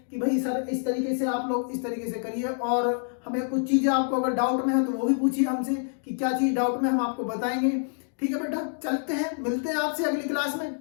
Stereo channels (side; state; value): right; silent; digital silence